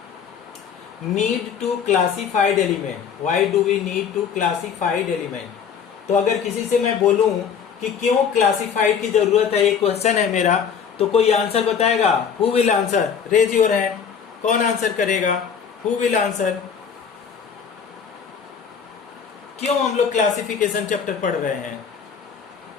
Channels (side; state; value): right; quieter; 7.0 dB